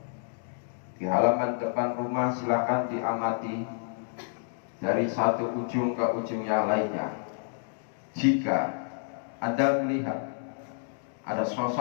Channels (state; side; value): silent; right; digital silence